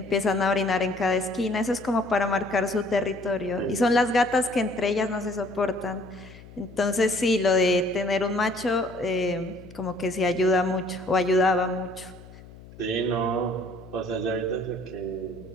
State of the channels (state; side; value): noise; left; hum, 19 dB below the sound